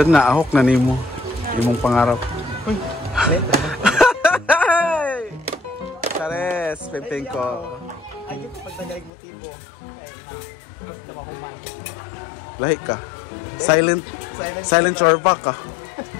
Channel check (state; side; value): drops out; right; at 9.1 s